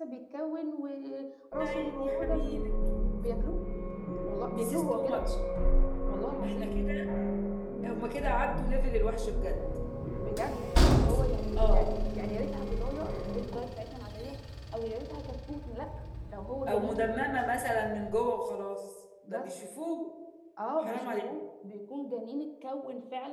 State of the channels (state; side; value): identical; both; correlation 1.00